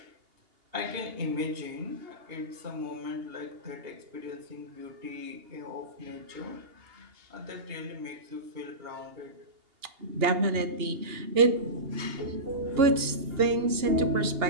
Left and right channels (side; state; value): left; late; 2.8 ms